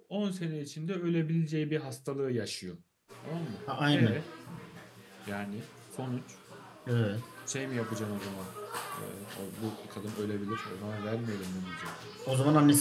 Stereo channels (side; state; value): both; identical; correlation 1.00